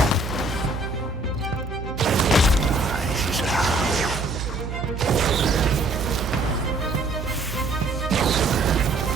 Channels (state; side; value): noise; right; hum, 6 dB below the sound